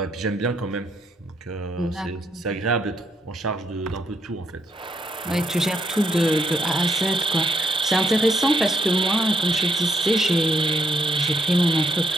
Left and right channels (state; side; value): normal; both; correlation 0.75